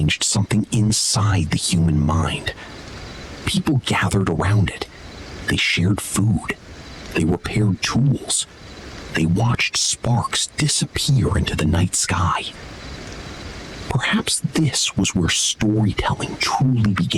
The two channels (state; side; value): identical; both; correlation 1.00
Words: something inside the human mind. People gathered around it. They shared food. They repaired tools. They watched sparks disappear into the night sky. Perhaps this was where storytelling truly